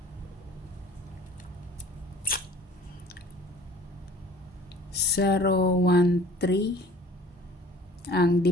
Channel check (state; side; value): normal; both; correlation 0.49